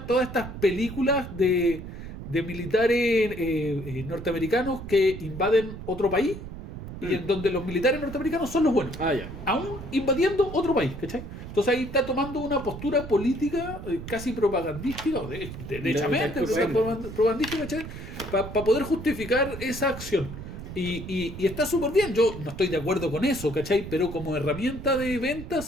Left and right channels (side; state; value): right; noise; rumble, 10 dB below the sound